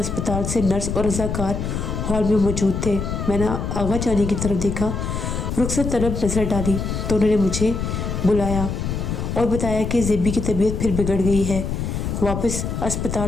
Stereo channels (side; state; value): left; noise; rumble, 3 dB below the sound